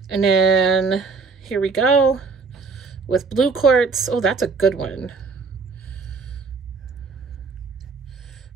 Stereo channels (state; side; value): quieter; left; 4.6 dB